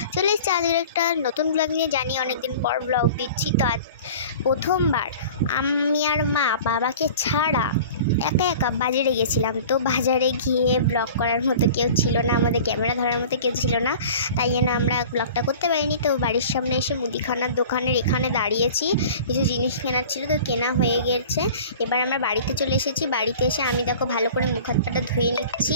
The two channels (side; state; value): both; inverted; correlation -0.42